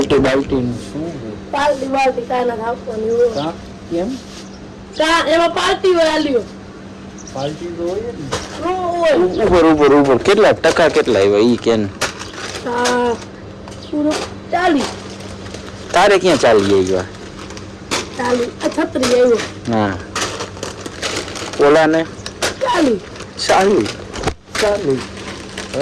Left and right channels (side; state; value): both; identical; correlation 1.00